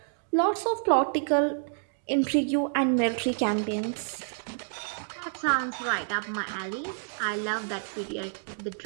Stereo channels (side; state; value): left; silent; digital silence